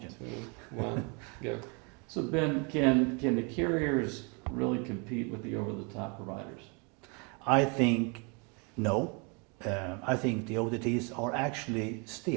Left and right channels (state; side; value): quieter; left; 33.2 dB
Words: 2, 1, go. So Ben, can the carriers really compete with the over-the-top providers? I think no. I think the OTTs are actually